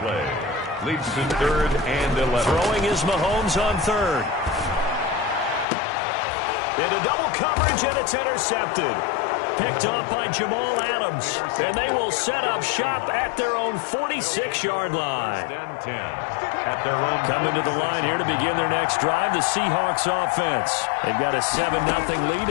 Leads to 3rd and 11. Throwing is Mahomes on 3rd. Into double coverage, and it's intercepted. Picked off by Jamal Adams, and they will set up shop at their own 46-yard line. At their own coming to the line here to begin their next drive, the Seahawks offense. They've got a 7-0 lead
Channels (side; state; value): right; drops out; at 5.7 s